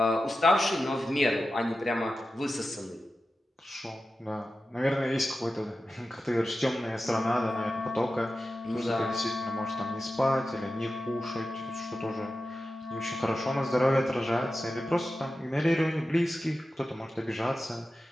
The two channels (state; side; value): normal; both; correlation 0.93